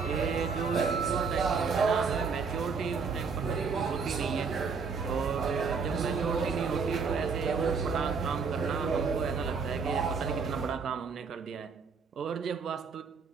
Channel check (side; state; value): left; quieter; 5.3 dB